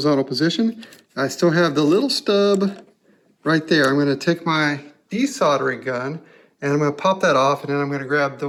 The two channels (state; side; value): identical; both; correlation 1.00